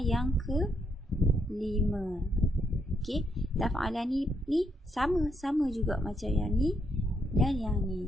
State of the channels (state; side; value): normal; both; correlation 0.76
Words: yang ke-5. Okey, taf'alani ni sama juga macam yang ni dan yang ni.